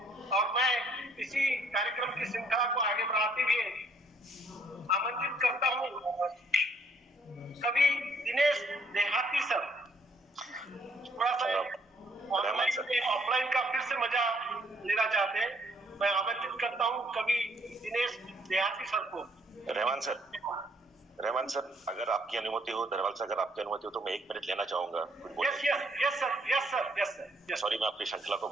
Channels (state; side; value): normal; both; correlation 0.67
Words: और मैं इसी कार्यक्रम की श्रृंखला को आगे बढ़ाते हुए आमंत्रित करता हूँ कभी दिनेश देहाती सर, थोड़ा सा ऑफलाइन का फिर से मजा लेना चाहते हैं। मैं आमंत्रित करता हूँ कभी दिनेश देहाती सर को। रहमान सर, अगर आपकी अनुमति हो, दरवाल सर अगर आपकी अनुमति हो तो मैं 1 मिनट लेना चाहूंगा। Yes sir. सॉरी, मैं अपनी श्रृंखला को